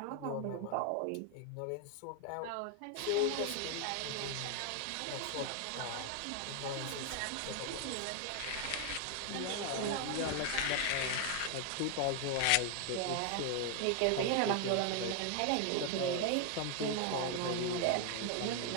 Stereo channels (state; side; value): different; both; correlation 0.01